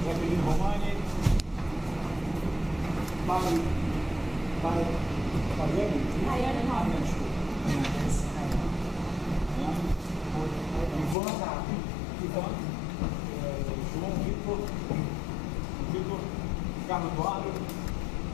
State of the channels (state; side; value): drops out; right; at 11.2 s